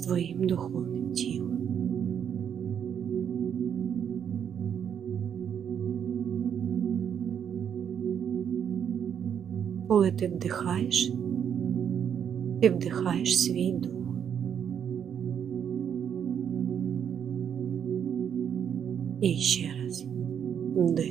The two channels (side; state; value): left; quieter; 8.3 dB